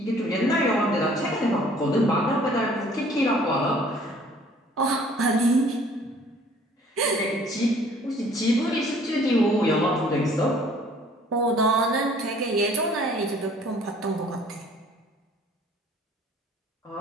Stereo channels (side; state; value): both; normal; correlation 0.55